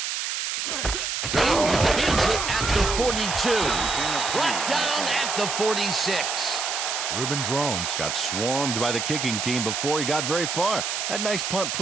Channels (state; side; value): noise; right; hiss, 2 dB below the sound